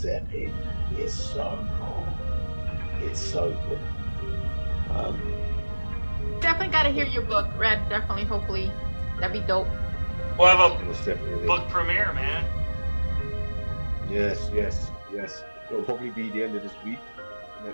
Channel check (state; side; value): inverted; both; correlation -1.00